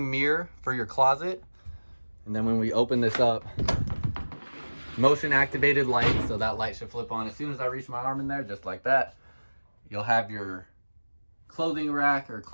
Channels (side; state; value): both; inverted; correlation -1.00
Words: mirror for your closet. And then when we open this up, motion activated light. So that light should flip on as soon as I reach my arm in there, just like that. You'll have your clothing rack or